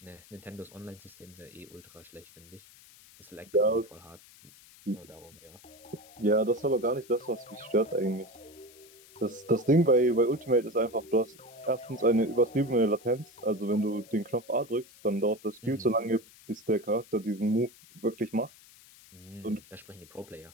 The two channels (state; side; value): noise; left; hiss, 23 dB below the sound